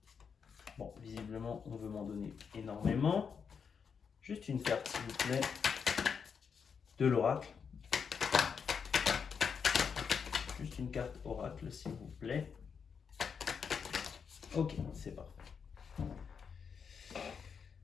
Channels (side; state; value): right; quieter; 6.4 dB